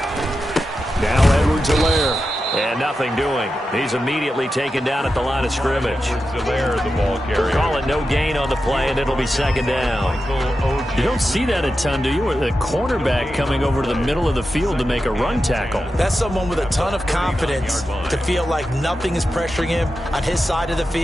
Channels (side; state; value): both; normal; correlation 0.90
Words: Now Edwards-Helaire. And nothing doing. He's immediately taken down at the line of scrimmage. The ball carrier. Call it no gain on the play, and it'll be 2nd down. You don't see that a ton, do you? Or the cornerback coming over to the middle of the field to make a run tackle. That's someone with a ton of confidence to feel like nothing is pressuring him on his side of the